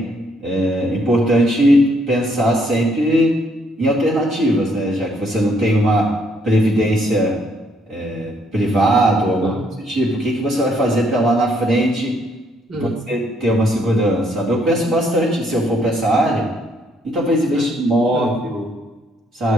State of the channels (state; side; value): normal; both; correlation 0.70